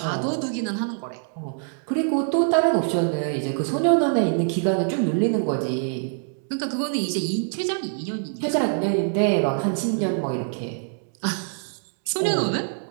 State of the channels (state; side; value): silent; left; 62 dB below the other